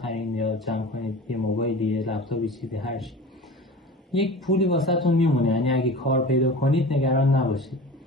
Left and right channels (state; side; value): normal; both; correlation 0.36